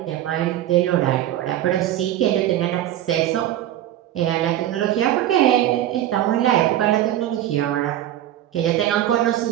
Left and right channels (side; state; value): left; quieter; 12.7 dB